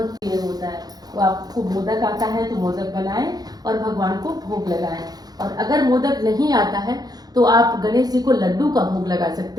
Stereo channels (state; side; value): late; left; 0.19 ms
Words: प्रिय होता है, तो आपको मोदक आता है तो मोदक बनाएं और भगवान को भोग लगाएं। और अगर मोदक नहीं आता है तो आप गणेश जी को लड्डू का भोग लगा